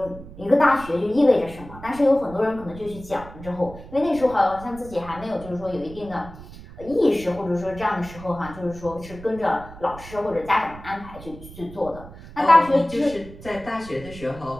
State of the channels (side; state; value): right; noise; rumble, 16 dB below the sound